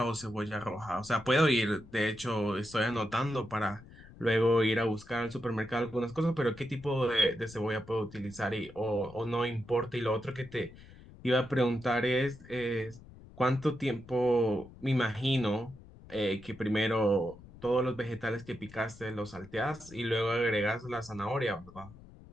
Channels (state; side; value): noise; left; rumble, 20 dB below the sound